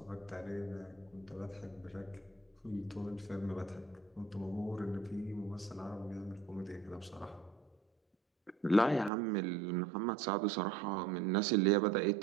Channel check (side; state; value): left; drops out; at 9.1 s